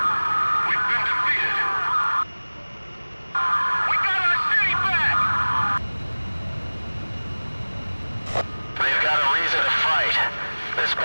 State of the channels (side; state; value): both; inverted; correlation -1.00